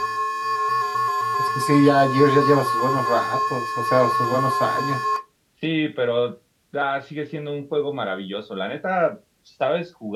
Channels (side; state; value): both; identical; correlation 1.00